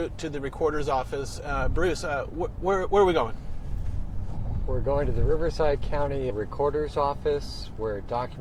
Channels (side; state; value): both; identical; correlation 1.00